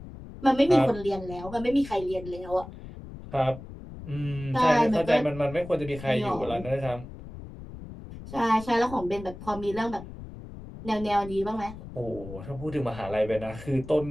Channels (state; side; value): noise; left; rumble, 14 dB below the sound